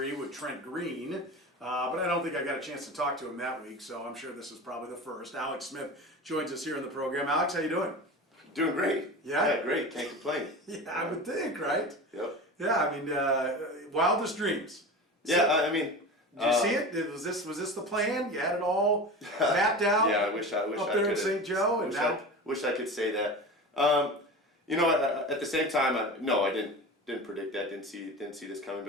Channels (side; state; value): both; normal; correlation 0.31